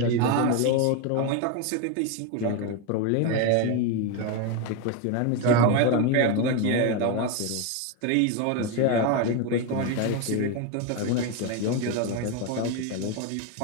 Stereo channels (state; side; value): different; both; correlation 0.02